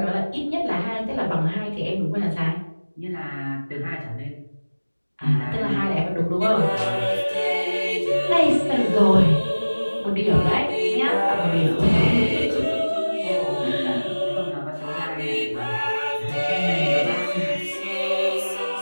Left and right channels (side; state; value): both; inverted; correlation -1.00